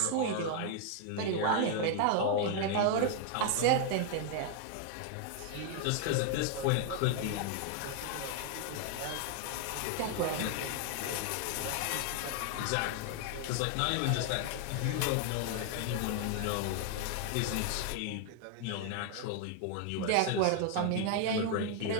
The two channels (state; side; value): different; both; correlation 0.00